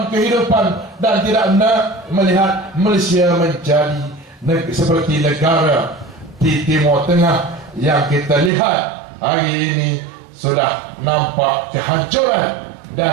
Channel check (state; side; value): drops out; left; at 8.5 s